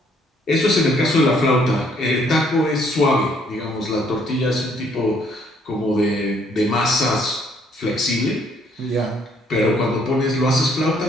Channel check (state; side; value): normal; both; correlation 0.66